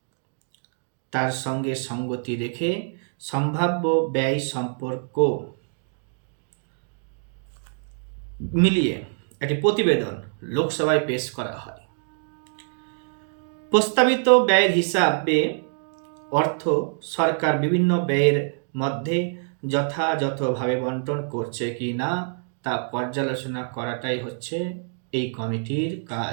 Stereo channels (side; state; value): left; silent; 62 dB below the other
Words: তার সঙ্গে সঙ্গতি রেখে সম্ভাব্য ব্যয় সম্পর্ক মিলিয়ে একটি প্রতিবেদন লোকসভায় পেশ করা হয়। প্রস্তাবিত ব্যয়ের হিসাবে অর্থ সরকার বিভিন্ন ব্যয়ের মধ্যে যথাযথভাবে বন্টন করছে কি না তা পর্যালোচনা করাটাই হচ্ছে এই কমিটির